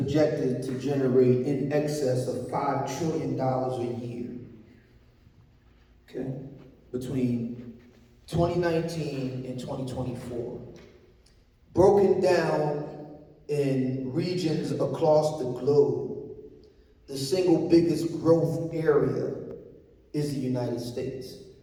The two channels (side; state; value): both; identical; correlation 1.00